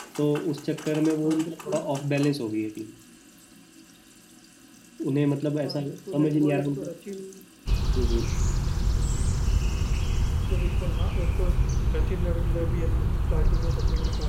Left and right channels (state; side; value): identical; both; correlation 1.00